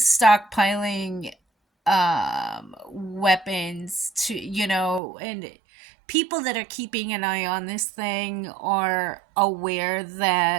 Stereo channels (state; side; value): drops out; left; at 5.0 s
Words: weapons to, and people that are keeping an eye on this thing are aware